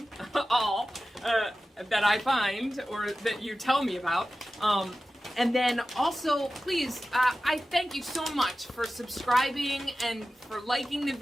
all that I find or that you tell me about. And then also, please, I thank you so much for subscribing and for liking the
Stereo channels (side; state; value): both; normal; correlation 0.94